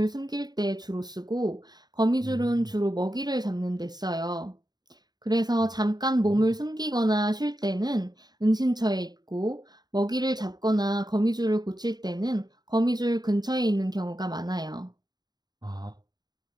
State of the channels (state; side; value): late; left; 0.20 ms